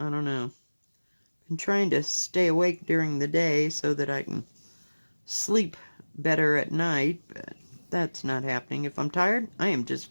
don't know. I'm trying to stay awake during the day so that I can sleep better at night, but that's not happening. If I'm tired, I am just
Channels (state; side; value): inverted; both; correlation -1.00